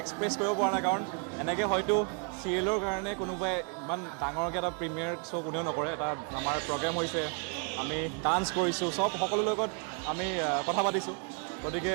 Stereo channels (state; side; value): quieter; left; 38.0 dB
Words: এক্সপ্ৰেছ কৰিব পৰা নাই, কাৰণ এনেকৈ হয়তো চিৰিয়েলৰ কাৰণে কোনোবাই ইমান ডাঙৰকৈ এটা প্ৰিমিয়াৰ শ্ব' কোনেও নকৰে। এটা আমাৰ প্ৰগ্ৰেম হৈছে, আমি ডান্স কৰিছোঁ, সকলোৰ লগত আমি কথা পাতিছোঁ। গতিকে